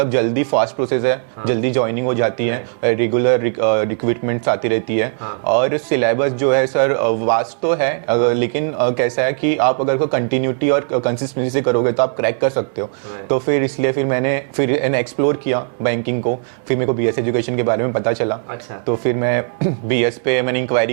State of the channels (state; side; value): silent; left; 67 dB below the other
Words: जल्दी फास्ट प्रोसेस है, जल्दी ज्वाइनिंग हो जाती है, रेगुलर रिक्रूटमेंट्स आती रहती है, और सिलेबस जो है सर वास्ट तो है, लेकिन कैसा है कि आप अगर कंटिन्यूटी और कंसिस्टेंसी से करोगे तो आप क्रैक कर सकते हो। तो फिर इसलिए फिर मैंने एक्सप्लोर किया बैंकिंग को, फिर मेरे को बीएस एजुकेशन के बारे में पता चला। अच्छा। तो फिर मैं बीएस पे मैंने